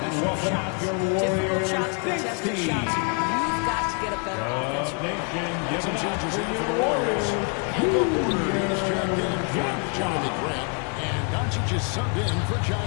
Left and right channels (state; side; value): quieter; right; 37.1 dB